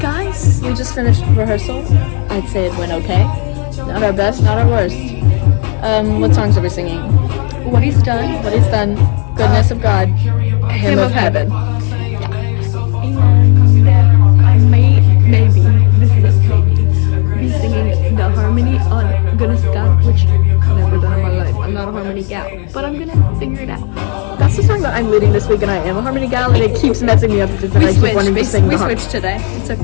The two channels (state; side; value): quieter; right; 38.2 dB